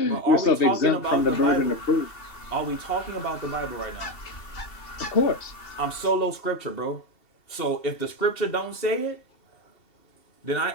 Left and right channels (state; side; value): late; right; 2.7 ms